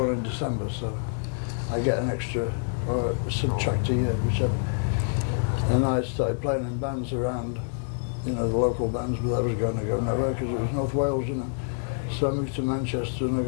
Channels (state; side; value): silent; right; 58 dB below the other